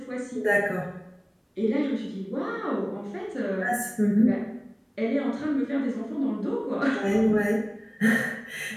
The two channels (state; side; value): identical; both; correlation 1.00